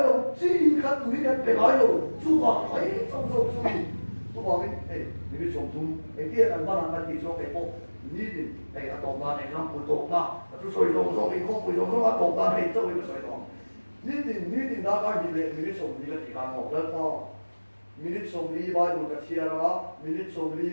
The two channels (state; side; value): inverted; both; correlation -1.00